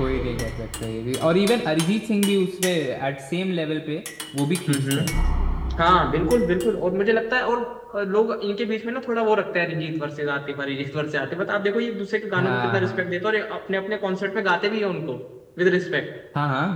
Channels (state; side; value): identical; both; correlation 1.00